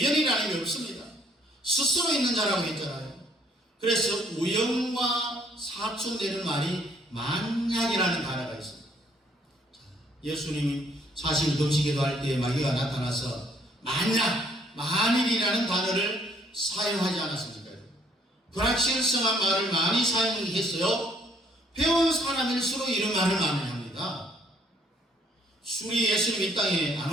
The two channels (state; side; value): normal; both; correlation 0.65